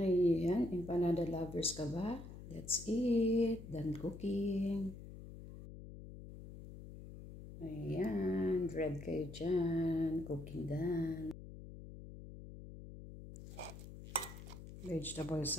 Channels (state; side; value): noise; left; hum, 13 dB below the sound